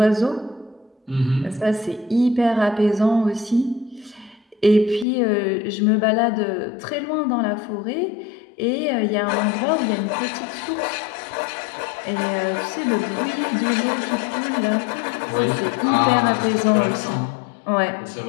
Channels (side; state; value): right; drops out; at 5.1 s